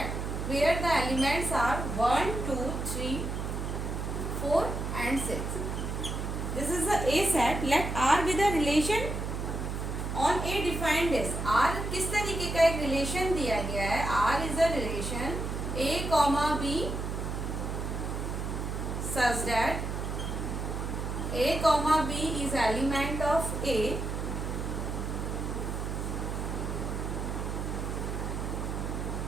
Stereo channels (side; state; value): right; noise; hum, 3 dB below the sound